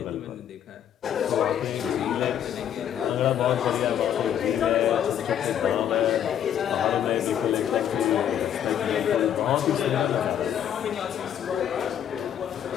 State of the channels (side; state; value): right; quieter; 9.7 dB